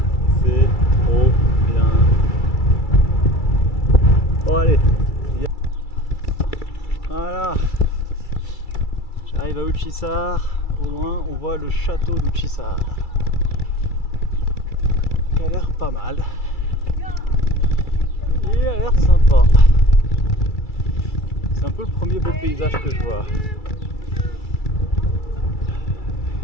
C'est trop bien. Bon, allez. Voilà. J'arrive à Uçhisar. Au loin, on voit le château d'Uçhisar. qui a l'air pas mal. Il a l'air sympa. C'est un peu le premier beau paysage que je vois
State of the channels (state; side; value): late; right; 2.3 ms